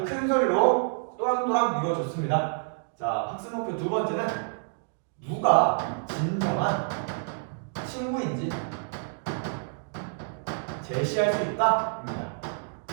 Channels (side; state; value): left; silent; digital silence